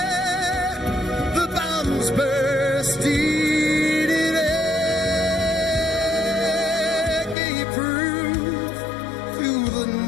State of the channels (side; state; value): right; drops out; at 7.4 s